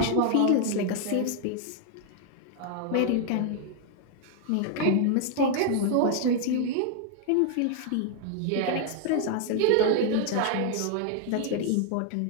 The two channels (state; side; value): different; both; correlation 0.00